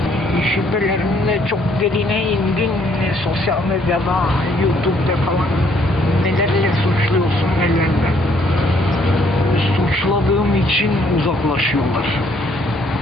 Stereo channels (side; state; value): both; normal; correlation 0.66